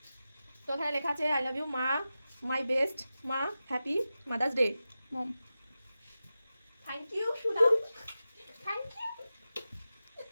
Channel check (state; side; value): inverted; both; correlation -0.93